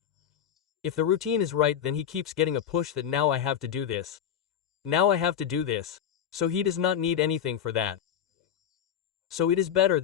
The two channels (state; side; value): quieter; right; 9.2 dB